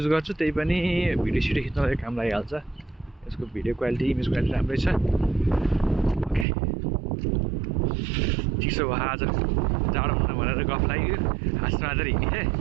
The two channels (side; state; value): left; drops out; at 6.5 s